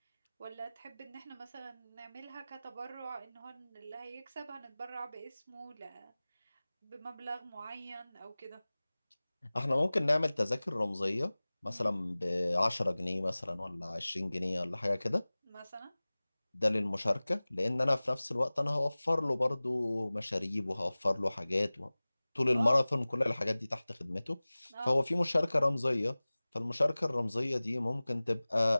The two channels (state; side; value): inverted; both; correlation -0.99